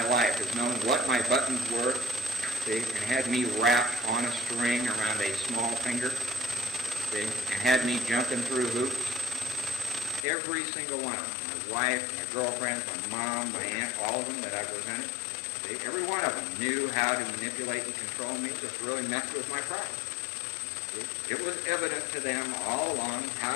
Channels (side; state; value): right; drops out; at 10.2 s